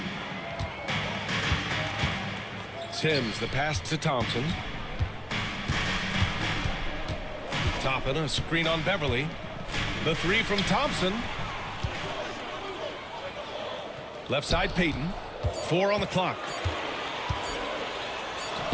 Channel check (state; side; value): identical; both; correlation 1.00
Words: Sims, the pass to Thompson. Toppin, a screen on Beverly. The 3 from Thompson. Left side, Payton. 4 on the clock.